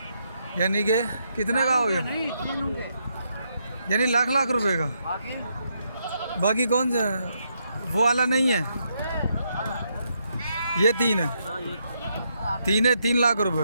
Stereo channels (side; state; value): both; inverted; correlation -0.78